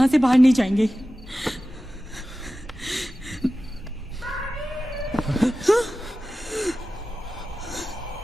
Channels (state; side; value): normal; both; correlation 0.95